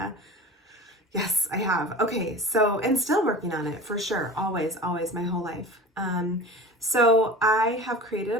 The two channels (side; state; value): both; normal; correlation 0.35